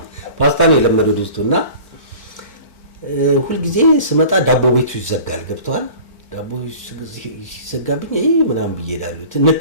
ፓስታ ነው የለመደው ድስቱና ሁሉ ጊዜ ስመጣ ዳቦ ቤቱ ይዘጋል ገብቷል ዳቦ ሲዘጋብኝ ምናምን ብዬዳሉ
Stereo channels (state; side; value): late; right; 4.4 ms